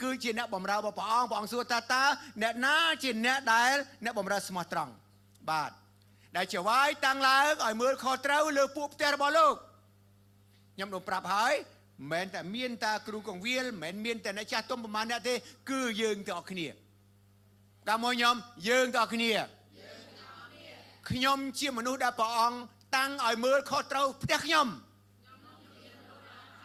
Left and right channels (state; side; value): identical; both; correlation 1.00